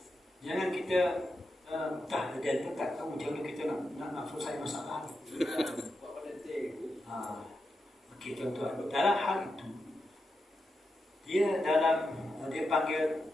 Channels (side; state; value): both; normal; correlation 0.88